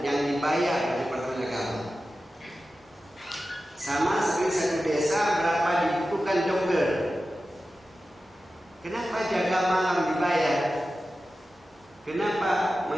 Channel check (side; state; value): both; normal; correlation 0.93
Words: yang dibayar dari Departemen Agama. Sama seperti satu desa berapa dibutuhkan dokter. Kenapa jaga malam dibayar? Kenapa